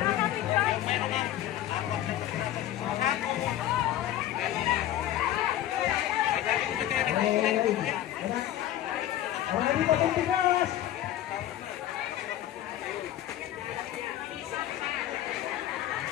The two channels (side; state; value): right; quieter; 12.9 dB